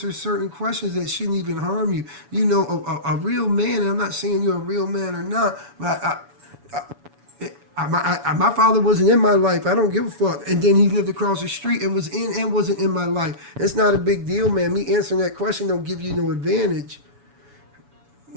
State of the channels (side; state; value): left; late; 7.1 ms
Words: certain questions that shouldn't even harm you. A real man, and I'm not saying you're a real man or not, but my father wasn't in my life. I don't give a fuck. And then he lived across the street and was in and wasn't in my life. It's not a big deal, man. Me answering that question don't give you no advantage.